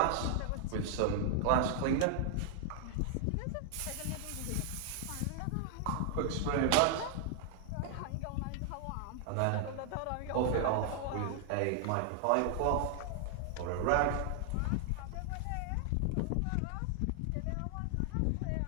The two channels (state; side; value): different; both; correlation 0.00